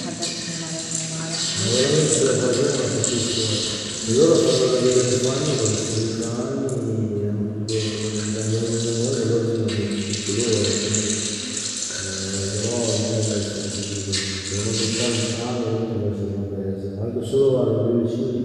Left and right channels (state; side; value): identical; both; correlation 1.00